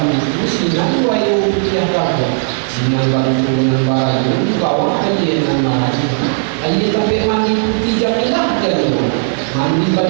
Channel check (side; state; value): left; silent; digital silence